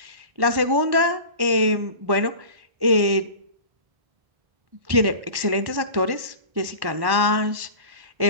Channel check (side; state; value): left; late; 1.1 ms